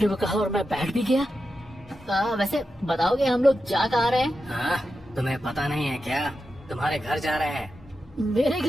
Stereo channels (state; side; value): normal; both; correlation 0.90